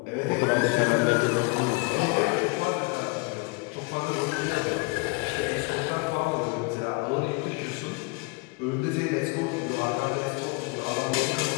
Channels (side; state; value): right; quieter; 28.8 dB